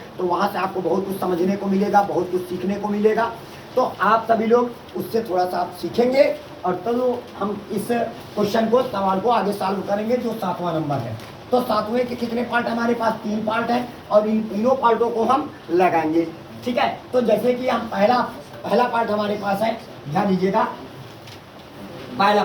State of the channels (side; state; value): both; identical; correlation 1.00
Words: तो वहाँ से आपको बहुत कुछ समझने को मिलेगा, बहुत कुछ सीखने को मिलेगा। तो आप सभी लोग उससे थोड़ा सा आप सीखेंगे और तो हम इस क्वेश्चन को, सवाल को आगे सॉल्व करेंगे जो 7वां नंबर है। तो 7वें के कितने पार्ट हमारे पास? 3 पार्ट हैं और इन तीनों पार्टों को हम लगाएंगे। ठीक है, तो जैसे कि हम पहला पार्ट हमारे पास है, ध्यान दीजिएगा। पहला